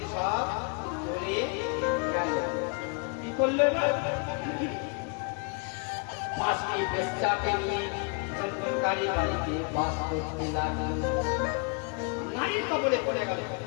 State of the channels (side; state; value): right; quieter; 35.4 dB